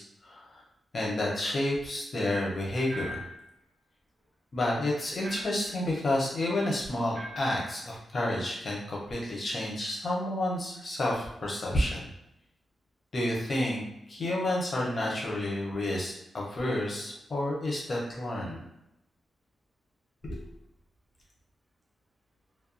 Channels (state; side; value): normal; both; correlation 0.87